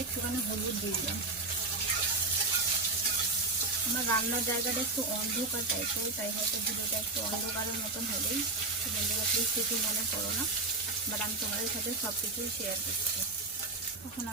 একটুখানি হলুদ দিয়ে দিলাম। আমার রান্নার জায়গাটা একটু অন্ধকার টাইপের, তাই হয়তো ভিডিওটা একটু অন্ধকারের মতন হলেই বন্ধুরা প্লিজ কিছু মনে করো না, বাট আমি তোমাদের সাথে সব কিছুই শেয়ার করছি। এখন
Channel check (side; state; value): left; quieter; 3.4 dB